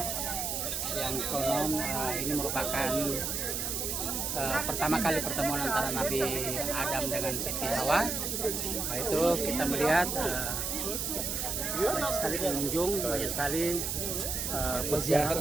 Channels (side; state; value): right; noise; hiss, 1 dB below the sound